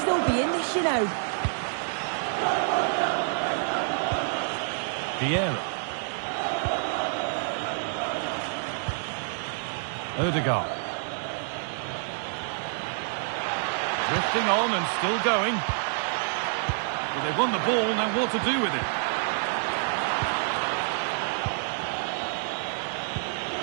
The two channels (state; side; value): silent; left; digital silence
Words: be in this, you know. Vieira. Odegaard. Drifting on and still going. Well, they've won the ball, now what to do with it?